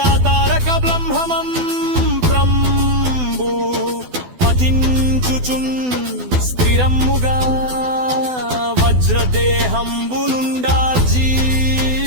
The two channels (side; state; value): left; late; 12 ms